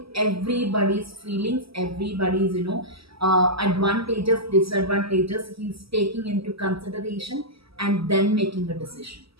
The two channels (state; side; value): late; left; 0.76 ms